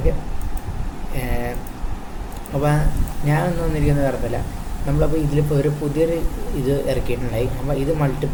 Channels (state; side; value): identical; both; correlation 1.00